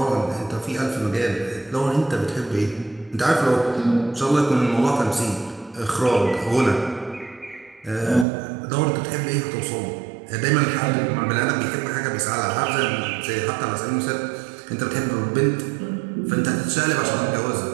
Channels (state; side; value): drops out; left; at 8.2 s